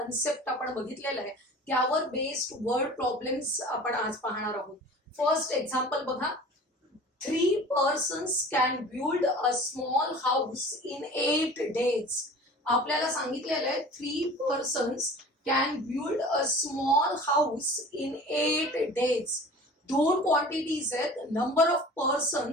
आपण बघितलेला आहे, त्यावर बेस्ड वर्ड प्रॉब्लेम्स आपण आज पाहणार आहोत। फर्स्ट एक्झाम्पल बघा, 3 persons can build a small house in 8 days। आपल्याला सांगितलेलं आहे 3 persons can build a small house in 8 days। दोन क्वांटिटीज आहेत, number of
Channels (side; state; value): both; normal; correlation 0.42